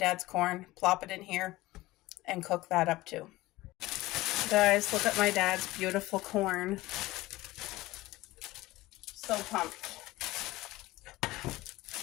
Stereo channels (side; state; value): right; quieter; 18.5 dB